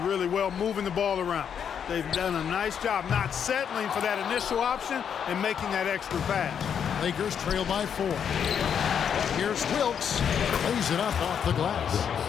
really well, moving the ball around. They've done a nice job not settling for that initial option and making that extra pass. Lakers trail by 4. Here's Wilkes. Lays it up off the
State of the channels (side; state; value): right; quieter; 7.9 dB